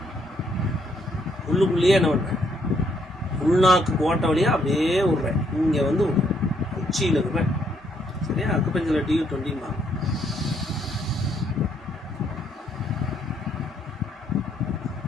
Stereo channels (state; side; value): normal; both; correlation 0.71